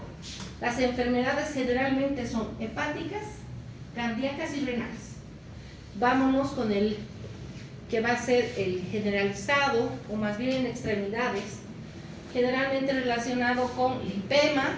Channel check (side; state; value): both; identical; correlation 1.00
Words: las enfermedades generalmente son hepáticas, cardíacas y renales. Vámonos con el que va a ser el generalizado, o más bien en extremidades, generalmente relacionado con lipema,